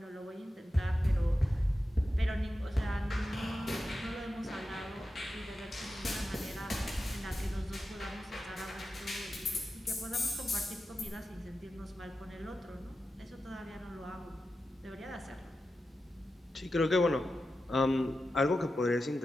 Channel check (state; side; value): normal; both; correlation 0.91